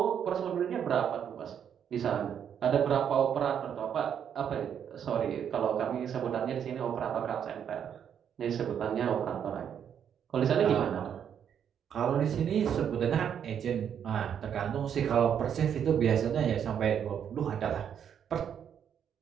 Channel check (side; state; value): left; quieter; 8.5 dB